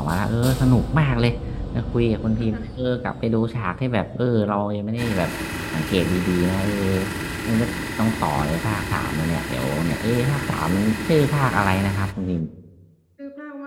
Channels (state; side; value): identical; both; correlation 1.00